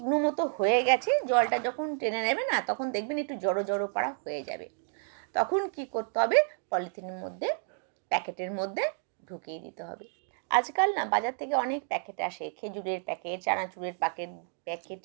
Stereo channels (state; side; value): silent; left; 57 dB below the other